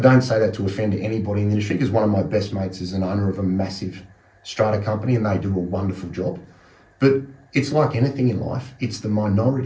don't say that to offend anybody in the industry, because one of my best mates is an owner of a massive strata company and they do a wonderful job. But it's like anything in life, it's the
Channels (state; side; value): identical; both; correlation 1.00